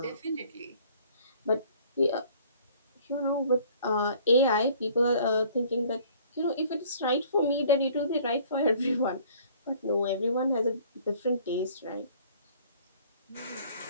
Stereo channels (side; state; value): both; inverted; correlation -0.55